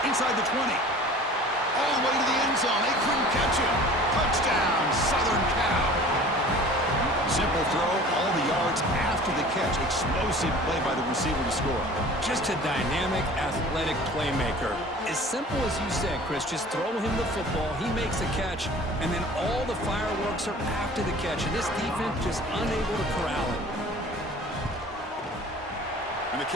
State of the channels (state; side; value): normal; both; correlation 0.44